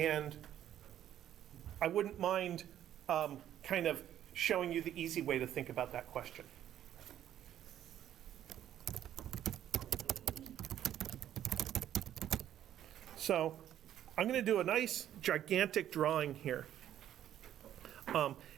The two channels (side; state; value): left; quieter; 11.2 dB